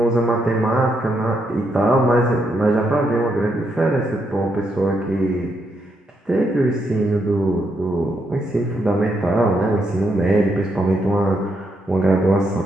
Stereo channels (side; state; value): both; normal; correlation 0.79